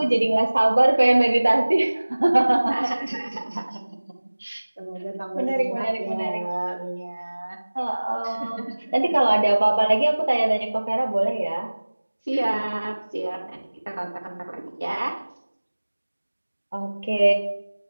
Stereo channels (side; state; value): both; inverted; correlation -1.00